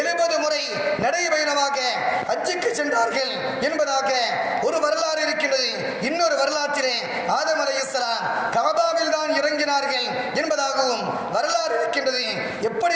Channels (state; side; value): identical; both; correlation 1.00